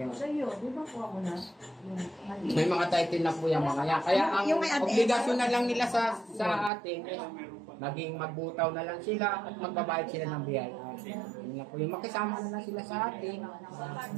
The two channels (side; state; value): left; drops out; at 6.7 s